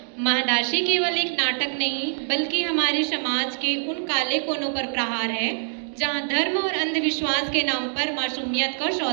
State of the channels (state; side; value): silent; left; digital silence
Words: महादाशी केवल एक नाटक नहीं बल्कि हमारे समाज के उन काले कोनों पर प्रहार है जहां धर्म और अंधविश्वास के नाम पर मासूमियत का